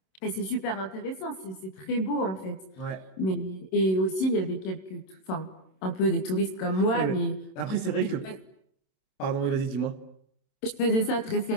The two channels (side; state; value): right; late; 27 ms